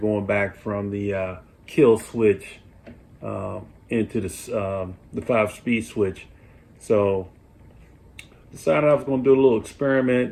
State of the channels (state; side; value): identical; both; correlation 1.00